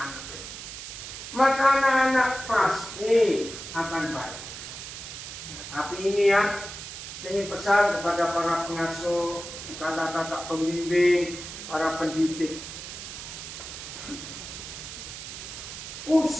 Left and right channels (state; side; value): noise; right; hiss, 10 dB below the sound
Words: Maka anak-anak pasti akan baik. Tapi ini ya, saya ingin pesan kepada para pengasuh, kata-kata pembimbing, para pendidik.